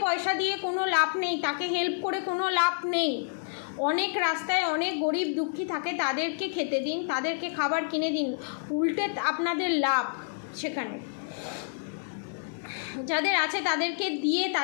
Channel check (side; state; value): right; silent; digital silence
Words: পয়সা দিয়ে কোনো লাভ নেই, তাকে হেল্প করে কোনো লাভ নেই। অনেক রাস্তায় অনেক গরিব দুঃখী থাকে, তাদেরকে খেতে দিন, তাদেরকে খাবার কিনে দিন, উল্টে আপনাদের লাভ সেখানে। যাদের আছে তাদেরকে দিয়ে